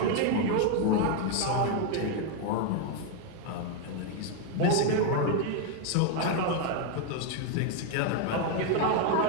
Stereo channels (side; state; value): both; different; correlation 0.01